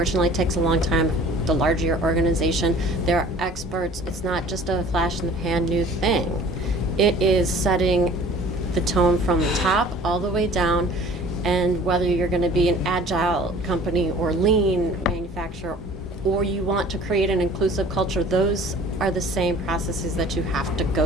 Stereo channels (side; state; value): both; normal; correlation 0.48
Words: it takes a long time. The larger your organization, there are experts. It's not just a flash in the pan new thing. It is setting the tone from the top all the way down, and whether you're going to be an agile company or lean manufacturer, or you want to create an inclusive culture, those are the same processes that you have to